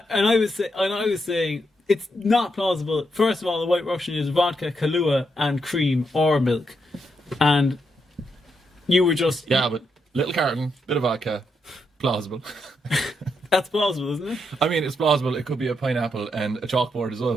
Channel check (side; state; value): both; normal; correlation 0.81